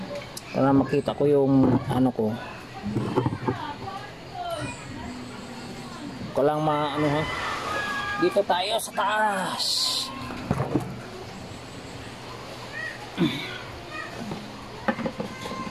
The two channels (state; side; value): identical; both; correlation 1.00